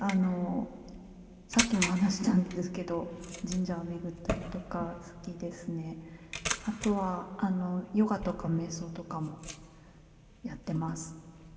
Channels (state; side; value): identical; both; correlation 1.00